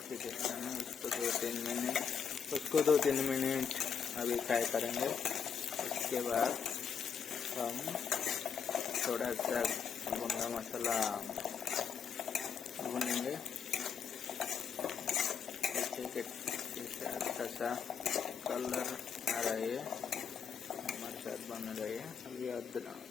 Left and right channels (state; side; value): quieter; right; 6.9 dB